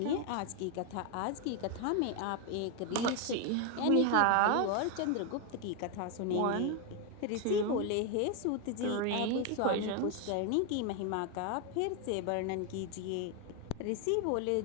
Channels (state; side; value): different; both; correlation 0.01